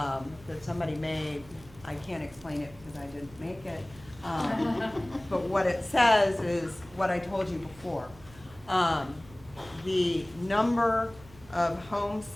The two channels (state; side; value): noise; right; hum, 21 dB below the sound